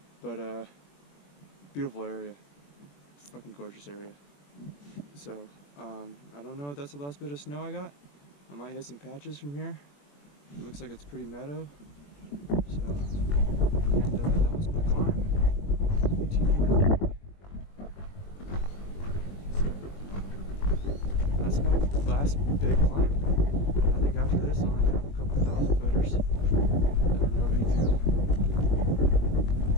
But beautiful area, fucking gorgeous area. So I don't know if that's the last bit of snow I got. I might hit some patches from here. It looks like it's pretty meadow. So, and that was my climb, 1,800 feet. So that's my last big climb. I think after this I'll only have a couple thousand footers that are no big deal.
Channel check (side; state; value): right; late; 21 ms